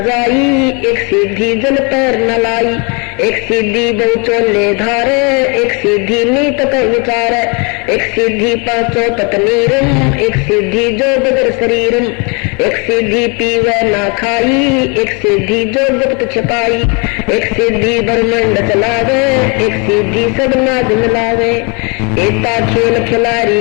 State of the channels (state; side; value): quieter; right; 32.5 dB